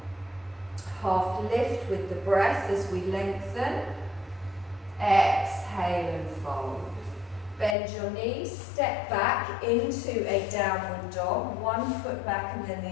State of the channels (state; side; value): drops out; right; at 7.8 s